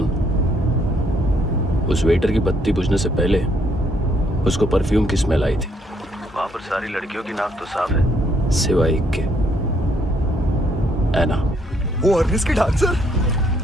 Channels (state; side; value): normal; both; correlation 0.69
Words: उस वेटर की बत्ती बुझने से पहले उसको परफ्यूम की स्मेल आई थी। वहां पर सारी लड़कियों की नाक तो साफ है, सिवाय एक के, एना। वो अर्निस की डांसर?